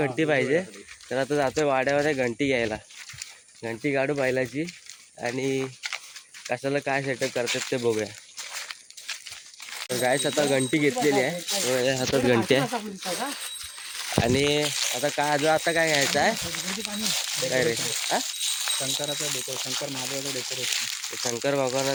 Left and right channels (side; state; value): both; identical; correlation 1.00